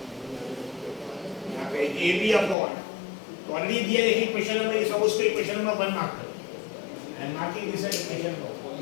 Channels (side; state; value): right; drops out; at 2.6 s